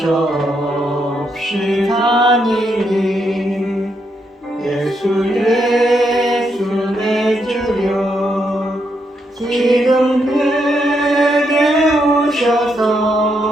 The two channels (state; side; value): normal; both; correlation 0.79